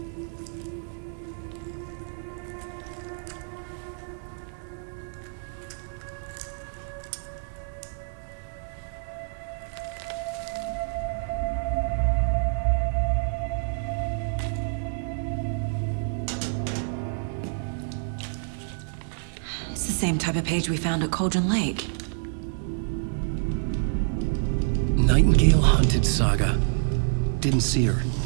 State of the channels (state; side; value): silent; left; 60 dB below the other